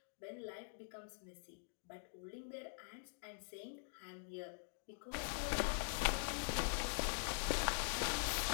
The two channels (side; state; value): right; silent; digital silence